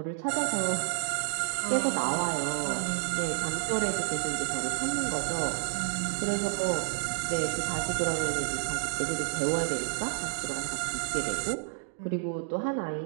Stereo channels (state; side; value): silent; left; digital silence